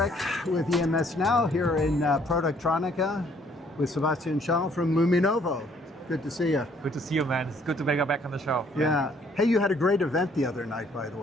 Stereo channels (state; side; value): normal; both; correlation 0.63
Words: with EMSNOW here in Productronica with Sebastian Schaal from Luminovo. Good to see you. Good to see you, man. It's good to be back on the show. Yeah. Hey, you had a great event the other night, by the